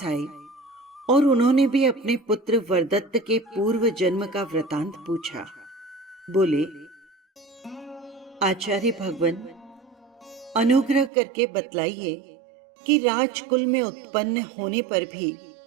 आए और उन्होंने भी अपने पुत्र वरदत्त के पूर्व जन्म का वृतांत पूछा। बोले, आचार्य भगवान, अनुग्रह करके बतलाइए कि राजकुल में उत्पन्न होने पर भी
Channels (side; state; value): left; drops out; at 11.1 s